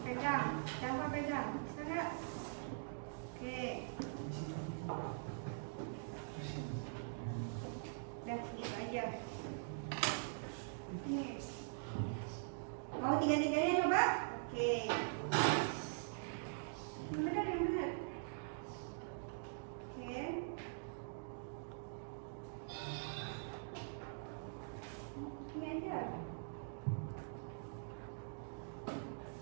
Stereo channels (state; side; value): silent; left; digital silence